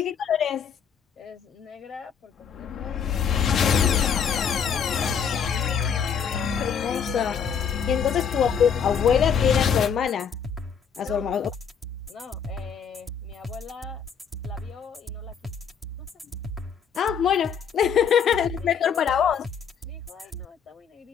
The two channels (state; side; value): quieter; right; 7.1 dB